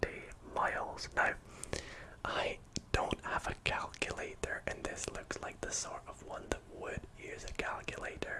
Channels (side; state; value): both; identical; correlation 1.00